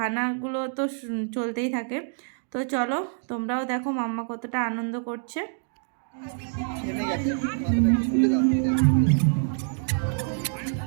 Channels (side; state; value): left; silent; digital silence